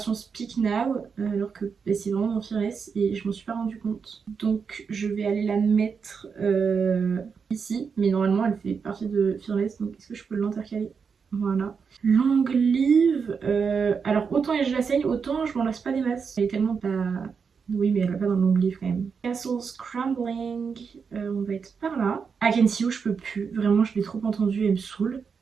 Speak Now, alors que bah, c'est vraiment dans Fearless et je m'en suis pas rendu compte. Donc je vais aller la mettre ici, mais normalement elle fait partie de Fearless, donc est-ce que je peux l'intercaler? Voilà. Long Live, alors autant je la saigne, autant je m'en lasse pas des masses. Elle est tellement pas... Oui, mais elle va pas dans le long livre quand même. Castle Scrambling, on va être par là. I Can See You, je peux plus. Vraiment, je l'ai trop entendu, elle me saoule.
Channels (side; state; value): left; quieter; 5.9 dB